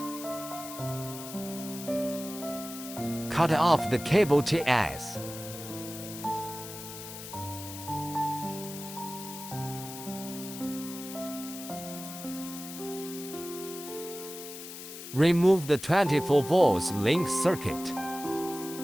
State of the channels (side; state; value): left; noise; hiss, 11 dB below the sound